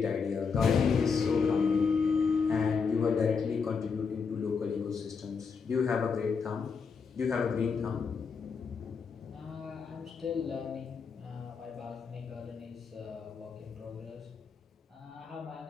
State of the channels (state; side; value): quieter; right; 5.5 dB